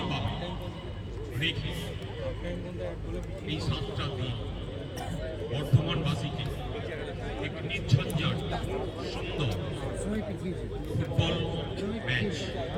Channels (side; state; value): both; identical; correlation 1.00